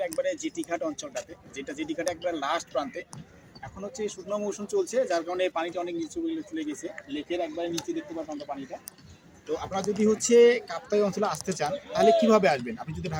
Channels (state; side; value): identical; both; correlation 1.00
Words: একবারে জিটি ঘাট অঞ্চলটাতে, যেটা জিটি ঘাট একবারে লাস্ট প্রান্তে। এখন হচ্ছে শুকনো মৌসুম চলছে, যার কারণে পানিটা অনেক নিচু চলে গেছে, লেকের একবারে নিচে দেখতে পাবেন আমরা পানিটা। তো আপনারা যদি হচ্ছে কাপ্তাই অঞ্চলে আসতে চান তাহলে কিভাবে আসবেন? আপনি যদি